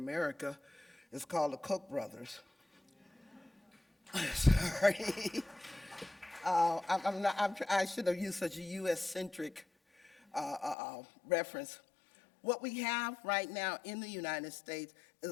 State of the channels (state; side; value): drops out; right; at 10.8 s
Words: It's called the Koch brothers. Sorry. I should have used such a US-centric reference. What we have right now in the United States